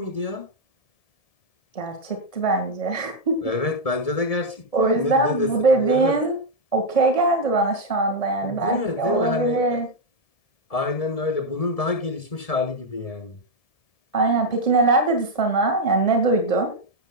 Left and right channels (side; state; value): right; late; 1.7 ms